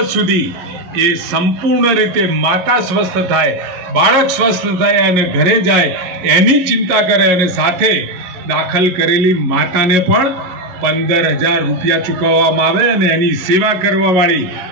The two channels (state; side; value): late; left; 11 ms